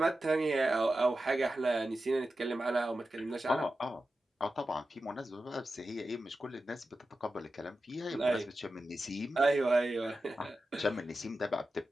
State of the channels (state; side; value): normal; both; correlation 0.92